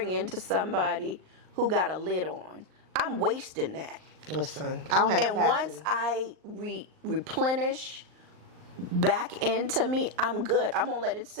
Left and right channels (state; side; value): late; left; 38 ms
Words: into somebody who got a lid on. I'm wasting that. Listen, I don't have And capacity. once I replenish back into me, I'm good. I'm gonna let it